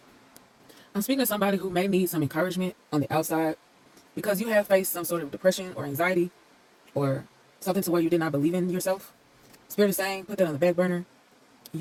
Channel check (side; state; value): both; identical; correlation 1.00